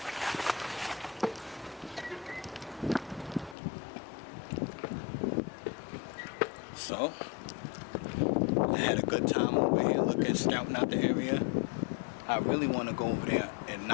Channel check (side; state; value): right; drops out; at 3.6 s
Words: So, I had a good time over here looking, scouting out the area. I really want to go over there and